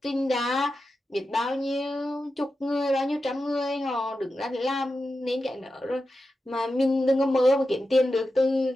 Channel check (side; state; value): both; normal; correlation 0.91